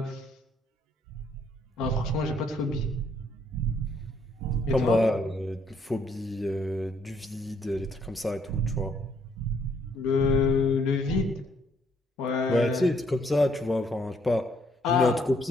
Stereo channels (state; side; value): normal; both; correlation 0.68